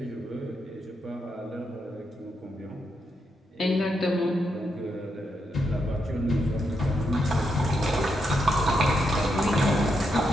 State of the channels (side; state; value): both; normal; correlation 0.82